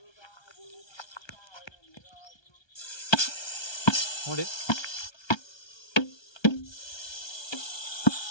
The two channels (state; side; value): late; right; 1.3 ms